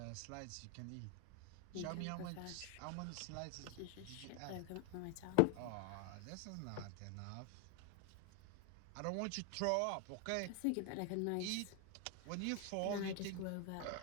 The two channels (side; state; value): both; different; correlation 0.00